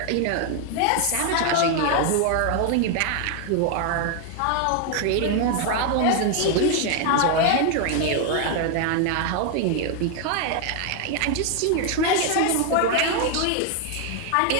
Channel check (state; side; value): different; both; correlation 0.01